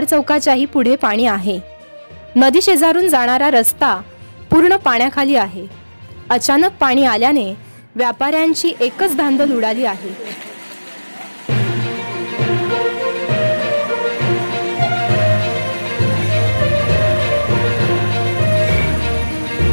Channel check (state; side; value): inverted; both; correlation -1.00